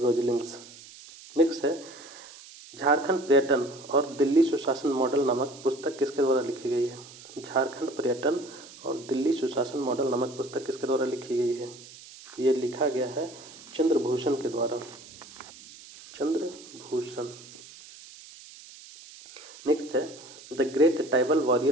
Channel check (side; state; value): right; noise; hiss, 18 dB below the sound